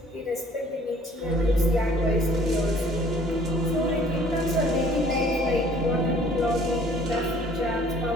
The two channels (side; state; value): both; normal; correlation 0.56